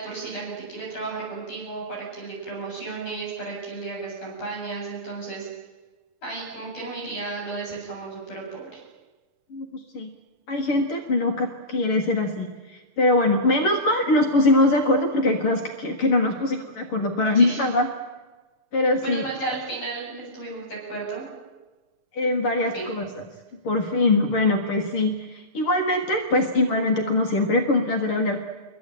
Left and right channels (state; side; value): late; right; 6.7 ms